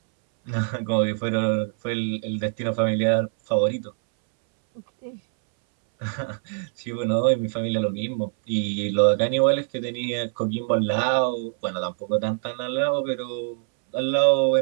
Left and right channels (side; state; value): left; silent; 61 dB below the other